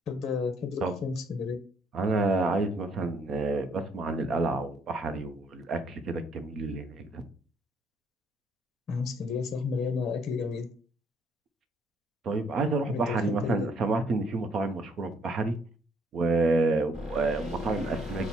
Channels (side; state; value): both; normal; correlation 0.66